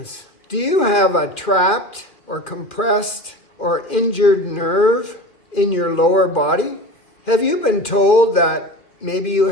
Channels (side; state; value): right; late; 2.4 ms